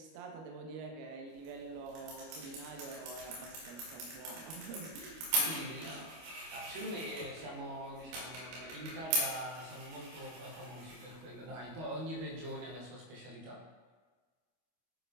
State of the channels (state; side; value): late; left; 25 ms